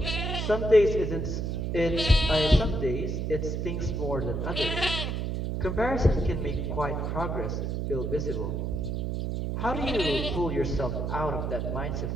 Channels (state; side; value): noise; right; hum, 1 dB below the sound